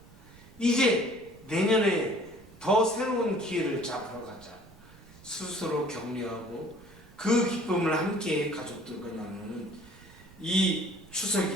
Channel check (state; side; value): noise; right; rumble, 23 dB below the sound